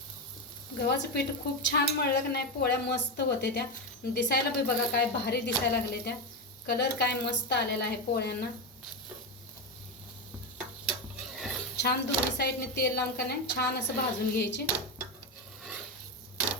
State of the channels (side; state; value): both; normal; correlation 0.11